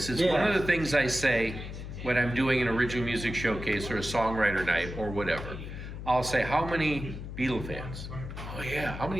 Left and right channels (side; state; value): left; noise; hum, 9 dB below the sound